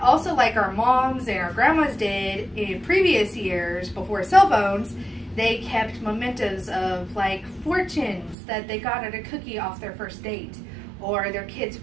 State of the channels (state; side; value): drops out; left; at 8.3 s